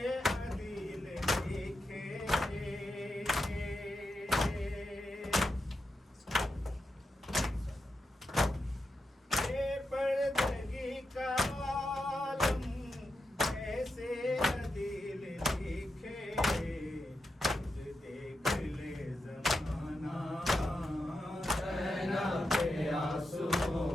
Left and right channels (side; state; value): both; normal; correlation 0.87